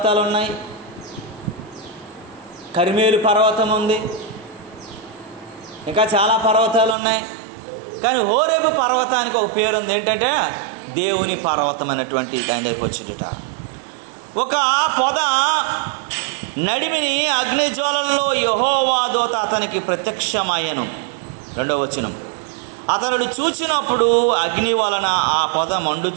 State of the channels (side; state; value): left; drops out; at 7.0 s